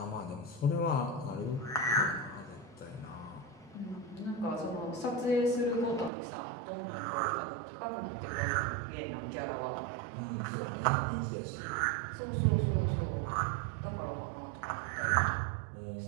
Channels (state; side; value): drops out; left; at 6.1 s